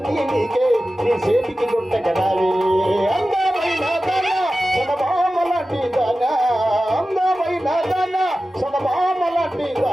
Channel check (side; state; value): both; normal; correlation 0.94